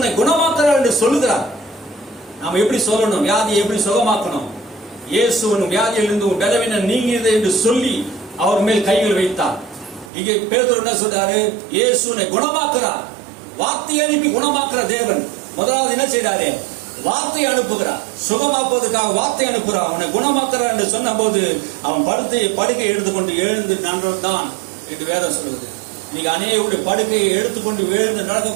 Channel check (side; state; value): left; drops out; at 10.1 s